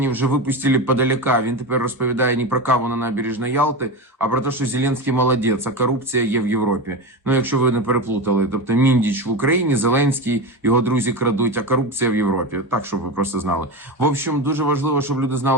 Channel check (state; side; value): normal; both; correlation 0.20